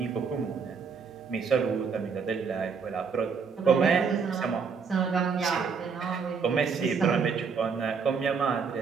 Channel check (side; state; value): left; quieter; 5.7 dB